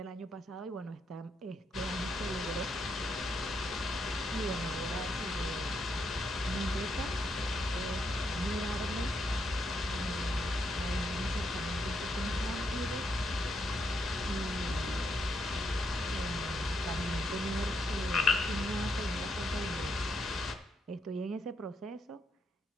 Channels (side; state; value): both; normal; correlation 0.79